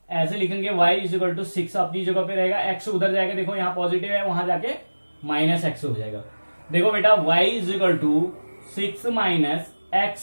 ऐसे लिखेंगे, y इज इक्वल टू 6 अपनी जगह पे रहेगा, x उधर जाएगा, देखो यहाँ पॉजिटिव है, वहां जाके माइनस x हो जाएगा। देखो बेटा y is equal to 6 minus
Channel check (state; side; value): inverted; both; correlation -1.00